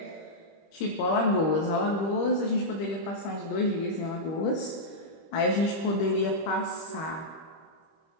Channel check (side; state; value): right; late; 25 ms